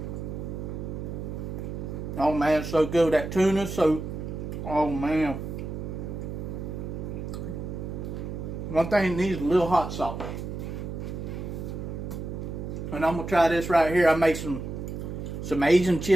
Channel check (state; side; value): noise; right; hum, 6 dB below the sound